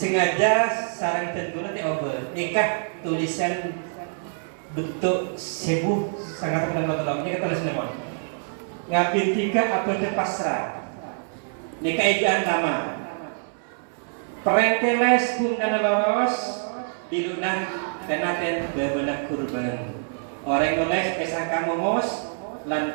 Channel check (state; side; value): silent; left; 62 dB below the other